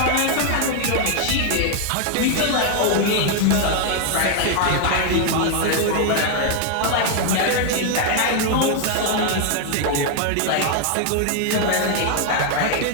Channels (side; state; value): both; different; correlation 0.00